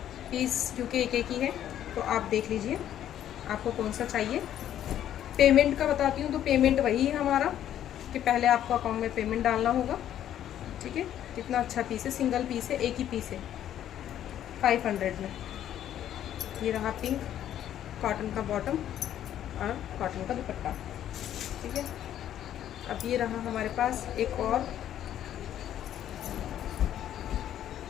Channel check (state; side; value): quieter; right; 11.1 dB